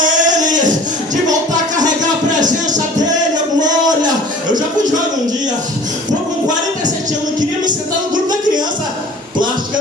Ele, de voltar a carregar a presença dEle, a glória. Eu já fui jovem um dia, estou com 47 anos, queria me sentar no grupo da criança plástica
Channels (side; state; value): both; normal; correlation 0.45